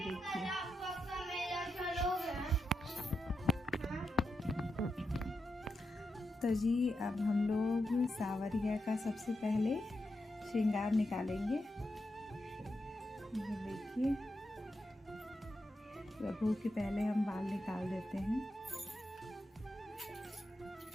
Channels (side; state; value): both; normal; correlation 0.86